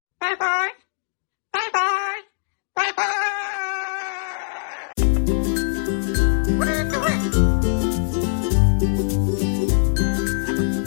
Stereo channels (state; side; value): silent; right; digital silence